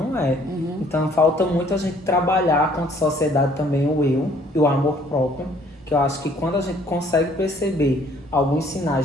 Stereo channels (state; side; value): normal; both; correlation 0.60